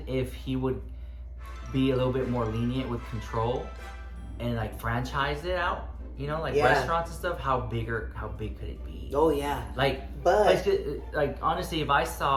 if he would be a little bit more lenient with control and like franchise it out. You know, like Yeah. restaurants and stuff. How big could it be? Oh yeah. Like honestly, if I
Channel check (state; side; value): identical; both; correlation 1.00